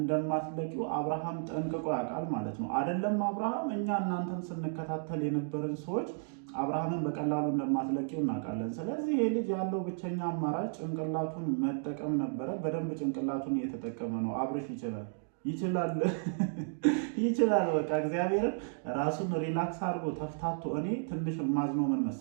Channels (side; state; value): left; silent; digital silence